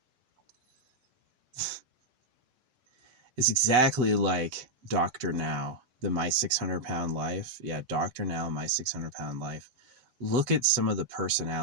It's exactly like Dr. Now, the My 600 Pound Life. Yeah, Dr. Now, My 600 Pound Life. Look at some of the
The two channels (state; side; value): late; left; 8.2 ms